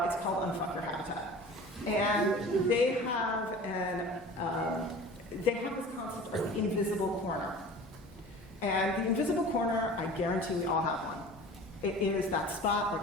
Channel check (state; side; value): normal; both; correlation 0.40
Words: it's called Unfuck Your Habitat. And they have they have this concept of the invisible corner. And the invisible corner, I guarantee we all have one. It is that spot